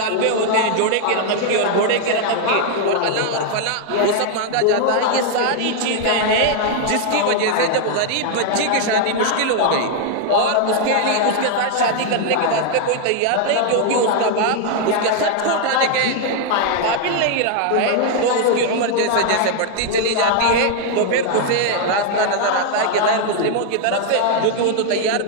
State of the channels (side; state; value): both; different; correlation 0.00